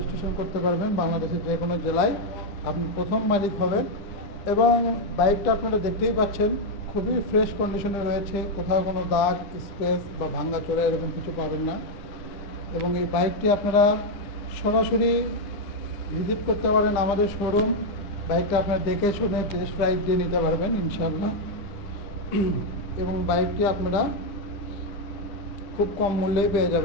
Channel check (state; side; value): late; right; 9.8 ms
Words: করতে পারবেন বাংলাদেশের যে কোনো জেলায়। আপনি প্রথম মালিক হবেন এবং বাইকটা আপনারা দেখতেই পাচ্ছেন খুবই ফ্রেশ কন্ডিশনে রয়েছে, কোথাও কোনো দাগ স্পেস বা ভাঙাচোরা এরকম কিছু পাবেন না। এবং এই বাইকটি আপনারা সরাসরি ভিজিট করতে পারেন আমাদের শোরুম। বাইকটা আপনারা দেখে শুনে টেস্ট রাইড দিয়ে নিতে পারবেন ইনশাল্লাহ। এবং বাইকটি আপনারা খুব কম মূল্যেই পেয়ে